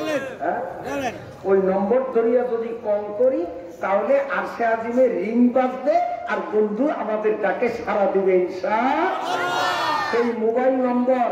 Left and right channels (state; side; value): identical; both; correlation 1.00